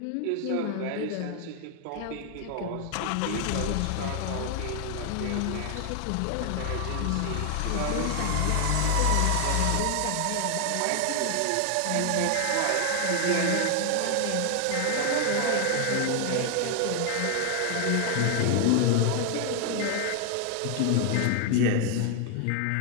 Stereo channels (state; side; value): different; both; correlation 0.00